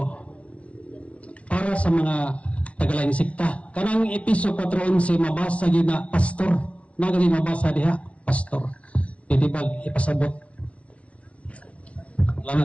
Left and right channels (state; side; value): late; right; 0.063 ms